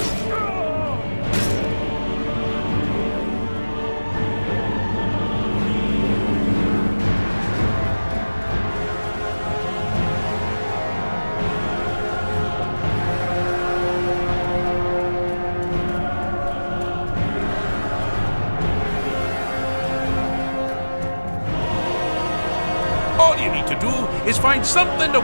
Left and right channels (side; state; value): both; inverted; correlation -1.00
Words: All you need to do is find something to